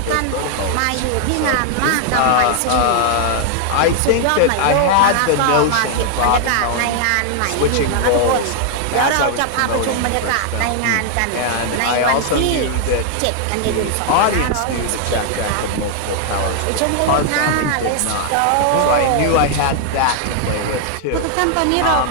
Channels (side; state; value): both; different; correlation 0.00